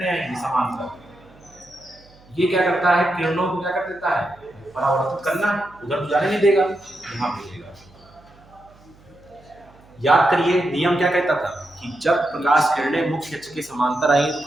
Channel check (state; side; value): noise; right; hum, 27 dB below the sound